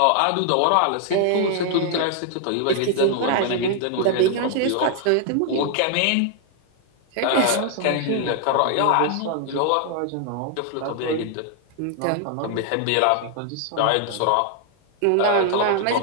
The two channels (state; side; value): different; both; correlation 0.00